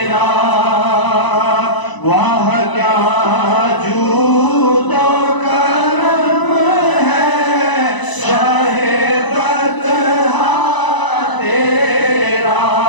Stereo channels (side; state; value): right; late; 1.0 ms